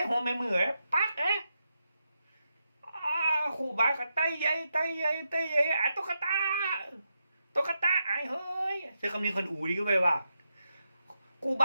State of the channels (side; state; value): both; inverted; correlation -0.85